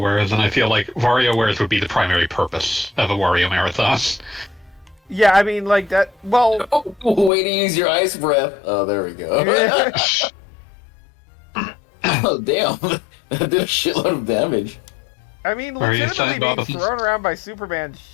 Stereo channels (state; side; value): drops out; right; at 7.3 s